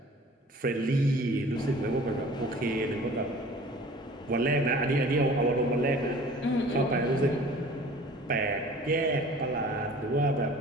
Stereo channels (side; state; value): both; normal; correlation 0.46